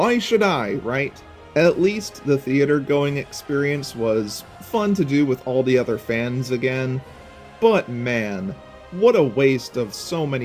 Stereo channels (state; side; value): identical; both; correlation 1.00